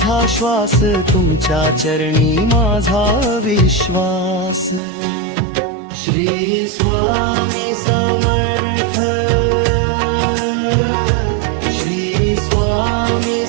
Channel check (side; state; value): left; drops out; at 4.8 s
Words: श्वास, तुमच्या चरणी माझा विश्वास. श्री स्वामी समर्थ, श्री स्वामी